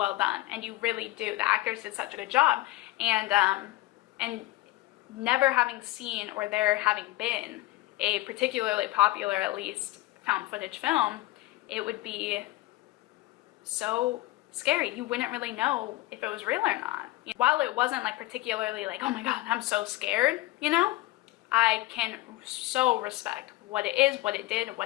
done, and you really do. The actors did such a good job, and never having seen or there having been a particularly popular, at least, found footage film, it would be so scary. You wouldn't really know if it was real or not. While it wasn't like particularly like, oh my god, I'm so scared, you know, I can so respect what it is, what it did,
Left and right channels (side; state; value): right; quieter; 18.2 dB